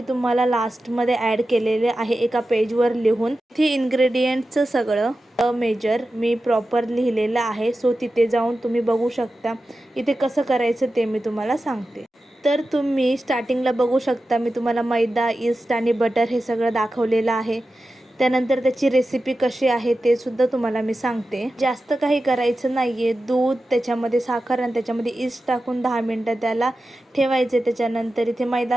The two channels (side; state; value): both; normal; correlation 0.93